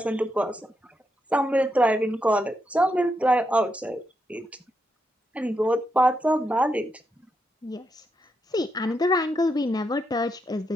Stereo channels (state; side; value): normal; both; correlation 0.82